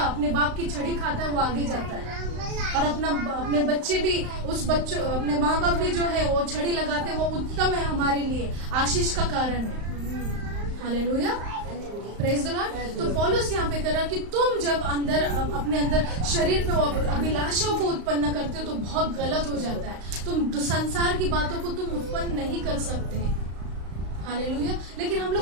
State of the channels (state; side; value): late; left; 35 ms